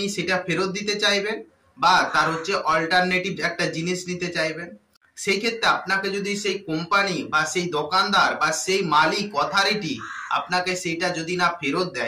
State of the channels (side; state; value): both; identical; correlation 1.00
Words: সেটা ফেরত দিতে চাইবেন বা তার হচ্ছে অল্টারনেটিভ একটা জিনিস নিতে চাইবেন। সেই ক্ষেত্রে আপনাকে যদি সেই কোম্পানি বা সেই দোকানদার বা সেই মালিক অথরিটি আপনাকে সেইটা যদি না ফেরত